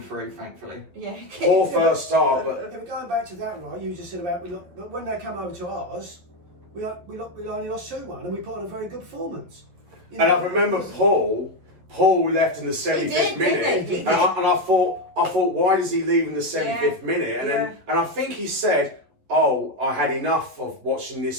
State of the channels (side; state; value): left; late; 11 ms